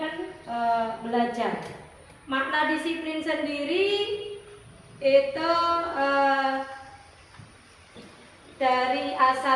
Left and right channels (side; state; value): both; identical; correlation 1.00